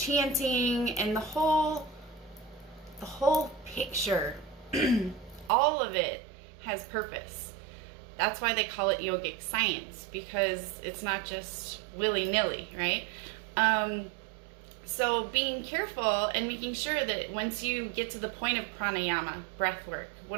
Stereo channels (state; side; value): drops out; left; at 5.5 s